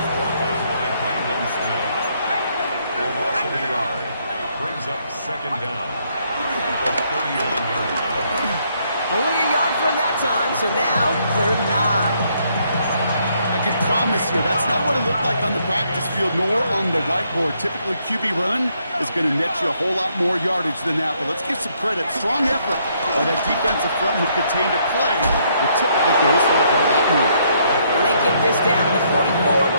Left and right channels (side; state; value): both; inverted; correlation -0.71